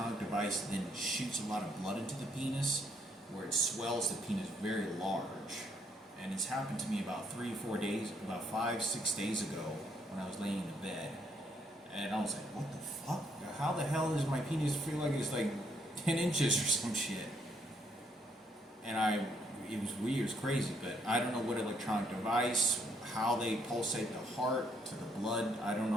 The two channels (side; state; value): both; normal; correlation 0.71